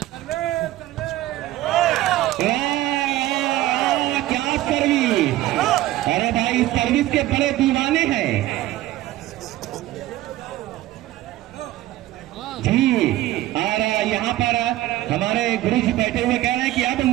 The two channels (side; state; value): left; quieter; 15.6 dB